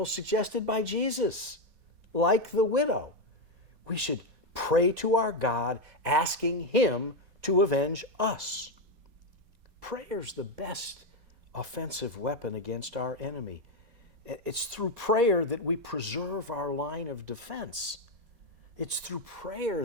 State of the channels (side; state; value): left; late; 4.2 ms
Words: suggested by Jesus. Like the widow, we should pray to our God, asking Him to avenge us. Prayer's the best offensive weapon against our enemy. It's through prayer that we preserve our line of defense. It's through